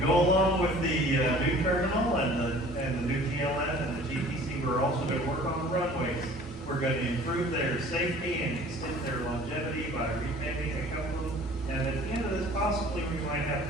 go along with the new terminal and the new TLN and the GTC, we're also going to work on the runways. We're going to improve their safety and extend their longevity by repaving a couple of them. And at the end of this, possibly we might have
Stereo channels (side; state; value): left; noise; rumble, 24 dB below the sound